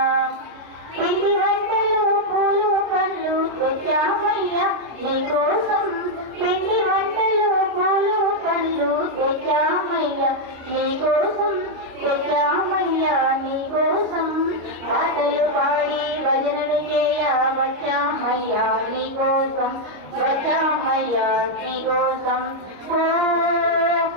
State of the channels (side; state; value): left; late; 26 ms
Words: పిండి వంటలు పూలు పండ్లు తెచ్చామయ్యా నీకోసం పిండి వంటలు పూలు పండ్లు తెచ్చామయ్యా నీకోసం తెచ్చామయ్యా నీకోసం పాటలు పాడి భజనలు చేయ వచ్చామయ్యా నీకోసం వచ్చామయ్యా నీకోసం ఓ